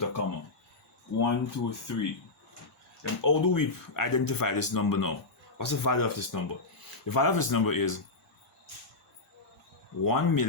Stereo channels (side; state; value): right; quieter; 3.4 dB